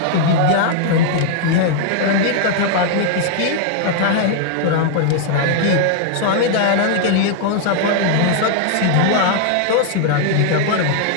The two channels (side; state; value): both; different; correlation -0.01